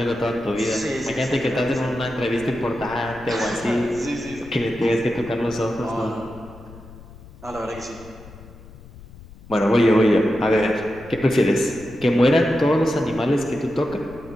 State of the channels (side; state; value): left; noise; rumble, 19 dB below the sound